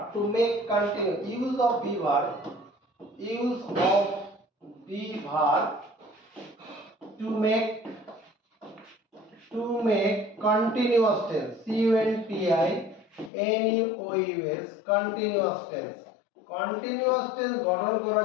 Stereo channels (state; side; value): drops out; right; at 13.3 s